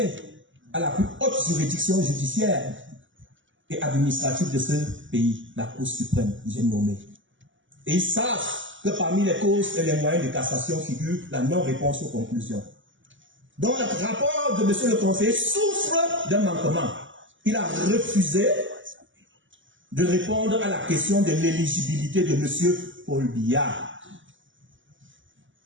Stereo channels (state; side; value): late; left; 0.55 ms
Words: à la plus haute juridiction judiciaire et administrative de ce pays, la Cour suprême, j'ai nommé. Et ils savent que parmi les causes et les moyens de cassation figure la non-réponse aux conclusions. Donc le rapport de monsieur le conseiller souffre d'un manquement. Il a refusé de répondre à la question de l'éligibilité de monsieur Paul Biya.